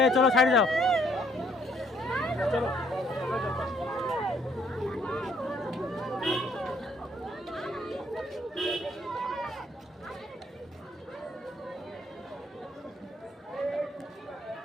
চলো সাইড যাও।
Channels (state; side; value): normal; both; correlation 0.66